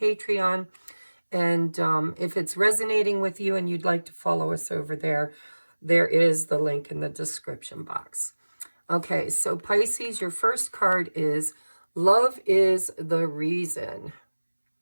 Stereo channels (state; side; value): inverted; both; correlation -1.00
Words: And if it's resonating with you and you'd like to follow us over there, there is the link in the description box. Okay, so Pisces, your first card is Love is the Reason.